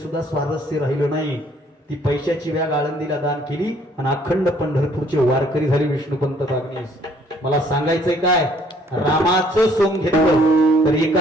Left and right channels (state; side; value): normal; both; correlation 0.62